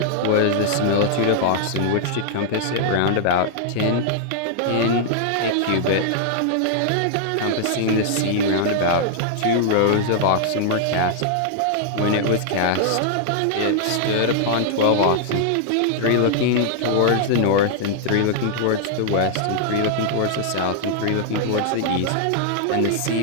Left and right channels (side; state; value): both; different; correlation -0.01